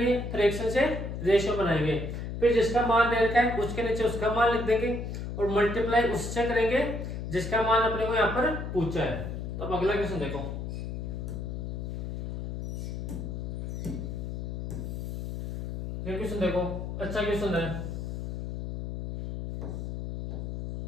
फ्रैक्शन से रेशियो बनाएंगे, फिर जिसका मान दे रखा है उसके नीचे उसका मान लिख देंगे, और मल्टीप्लाई उससे करेंगे जिसका मान अपने को यहाँ पर पूछा है। तो अब अगला क्वेश्चन देखो, ये क्वेश्चन देखो, अच्छा क्वेश्चन है,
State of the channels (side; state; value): left; noise; hum, 5 dB below the sound